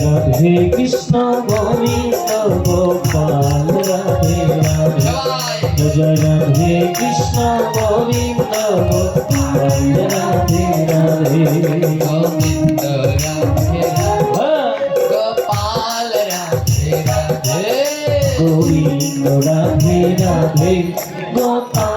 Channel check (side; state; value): both; identical; correlation 1.00